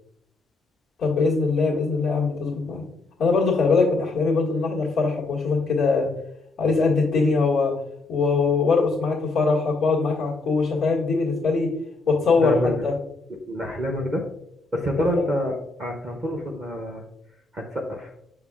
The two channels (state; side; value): quieter; right; 3.4 dB